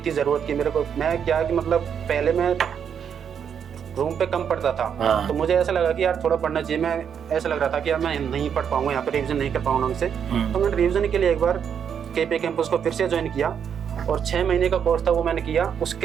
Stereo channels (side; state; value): left; quieter; 7.8 dB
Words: ज़रूरत कि मेरे को, मैं क्या कि मतलब पहले मैं रूम पे कम पढ़ता था, तो मुझे ऐसा लगा कि यार थोड़ा पढ़ना चाहिए। मैं ऐसा लग रहा था कि यार मैं नहीं पढ़ पाऊंगा, यहाँ पे रिवीजन नहीं कर पाऊंगा ढंग से। तो मैंने रिवीजन के लिए एक बार केपी कैंपस को फिर से ज्वाइन किया, और 6 महीने का कोर्स था वो मैंने किया।